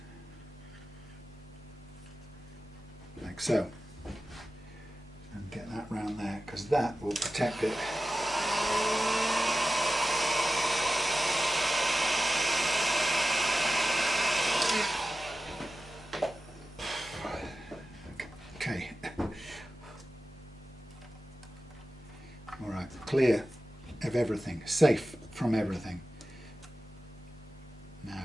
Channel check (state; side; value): normal; both; correlation 0.94